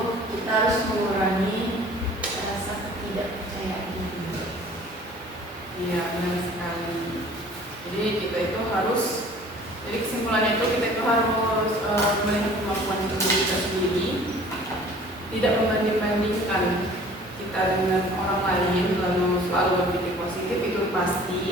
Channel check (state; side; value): normal; both; correlation 0.49